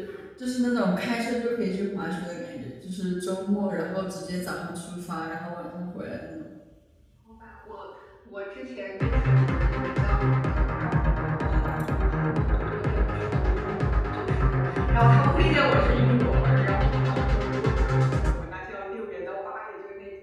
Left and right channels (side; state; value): both; identical; correlation 1.00